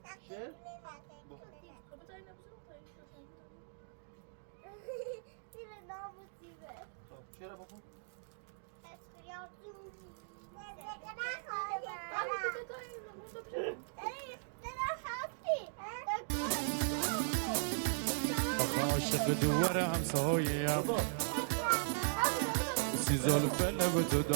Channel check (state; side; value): silent; left; digital silence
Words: شعر؟ خب چرا بخون؟ عاشق دوار همسایه‌ام بابا سی زلفه لب تو